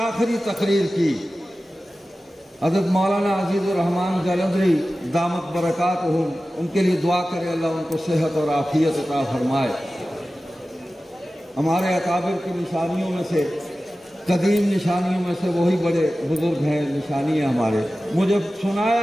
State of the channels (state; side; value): normal; both; correlation 0.95